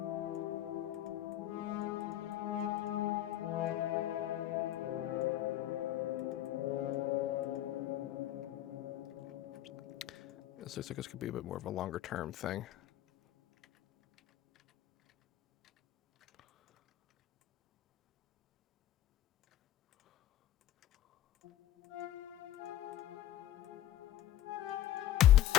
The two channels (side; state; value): right; quieter; 13.1 dB